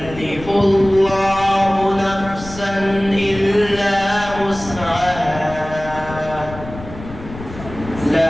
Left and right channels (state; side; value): noise; left; rumble, 13 dB below the sound